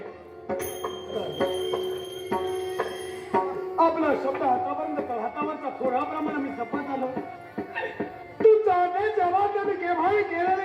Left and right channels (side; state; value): both; identical; correlation 1.00